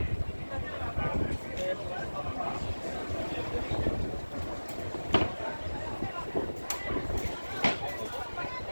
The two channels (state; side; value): inverted; both; correlation -1.00